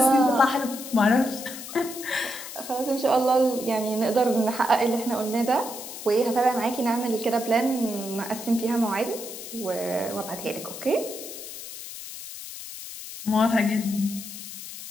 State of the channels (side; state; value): left; noise; hiss, 11 dB below the sound